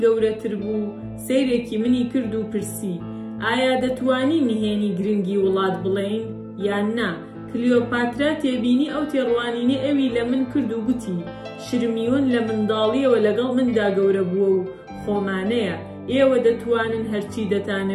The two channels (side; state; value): both; identical; correlation 1.00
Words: گەورەتر بوو سەیرێکی منی کرد و پرسی ئایا دەتوانی نهێنی گرنگی وڵات بڵێین یان نا؟ کلیۆپاترا تێبینی ئەو تێڕوانینە ئەوی لە من کرد و گوتی شرمیون لە منداڵیەوە لەگەڵ مندا گەورە بووە و خۆمانەیە، ئێوە دەتوانن هەرچی